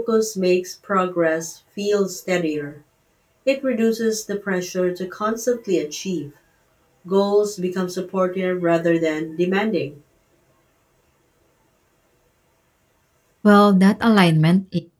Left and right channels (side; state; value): both; identical; correlation 1.00